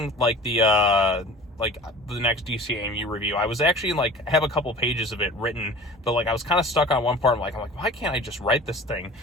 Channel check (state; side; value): normal; both; correlation 0.41